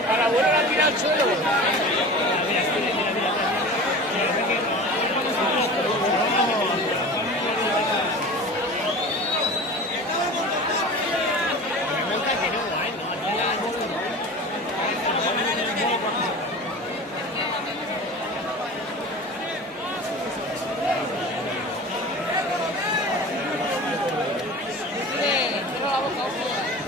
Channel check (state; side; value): normal; both; correlation 0.35